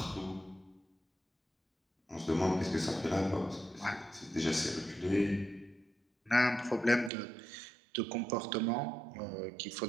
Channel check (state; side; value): drops out; left; at 7.1 s